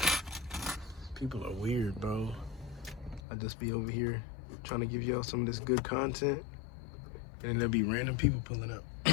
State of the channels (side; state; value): right; drops out; at 3.2 s